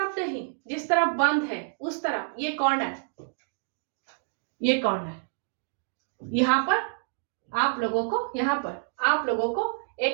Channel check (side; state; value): left; silent; digital silence